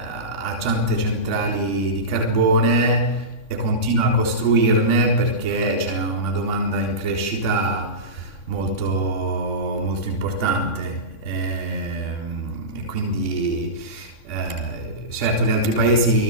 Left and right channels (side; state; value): right; late; 3.6 ms